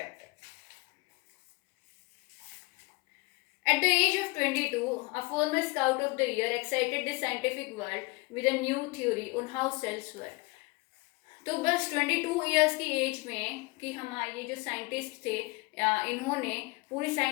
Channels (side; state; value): right; quieter; 25.2 dB